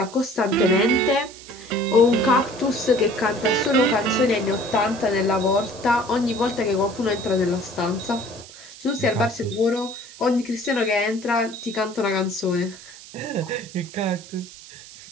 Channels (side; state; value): right; noise; hiss, 18 dB below the sound